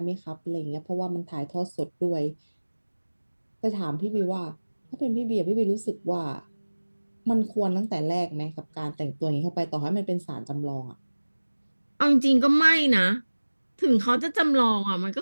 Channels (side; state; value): both; inverted; correlation -1.00